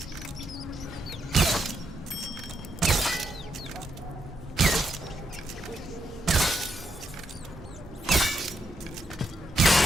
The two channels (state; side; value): normal; both; correlation 0.79